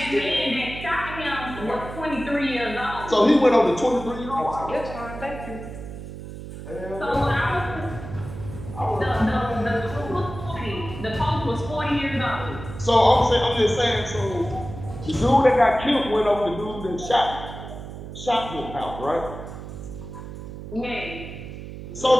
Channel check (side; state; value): right; noise; hum, 11 dB below the sound